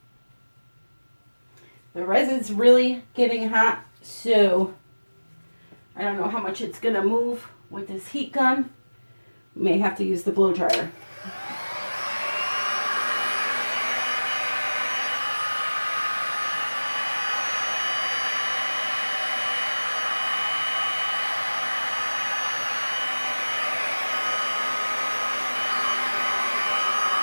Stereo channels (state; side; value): inverted; both; correlation -1.00